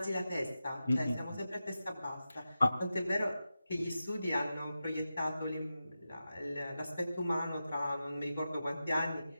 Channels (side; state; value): both; inverted; correlation -0.91